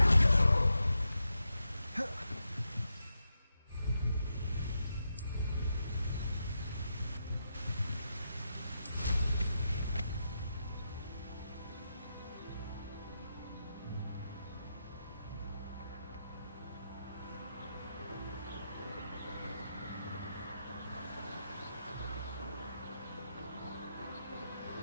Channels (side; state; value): both; inverted; correlation -0.86